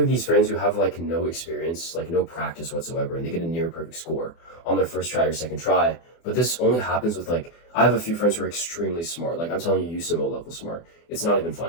these friends who have like no experience, like no practice whatsoever, and they get a near perfect score on their first try or second try. But this only happens with like, I have a few friends who are extremely smart. Like I'm telling you, USIMO level smart. It's not even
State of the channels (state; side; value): late; right; 24 ms